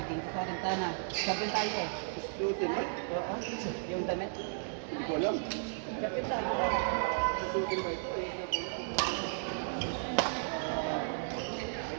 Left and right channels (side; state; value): left; silent; 55 dB below the other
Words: sa sorong tana. Champion tayo eh. Shooting ba? Oo. Yung damit. Hindi ko alam. Champion tayo. Shooting ba ito?